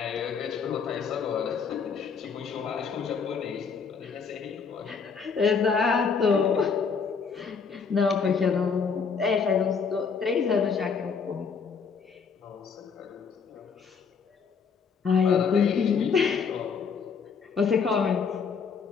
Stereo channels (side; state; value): right; quieter; 5.8 dB